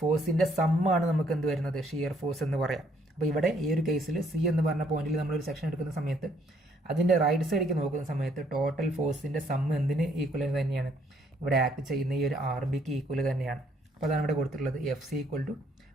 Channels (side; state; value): both; normal; correlation 0.67